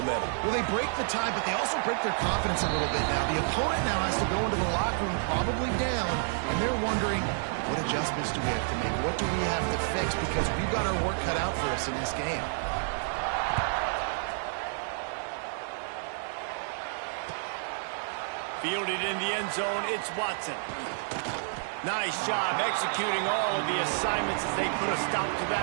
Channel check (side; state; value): left; silent; 58 dB below the other